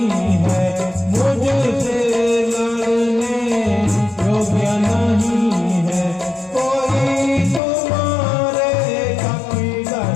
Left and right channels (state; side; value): drops out; right; at 7.6 s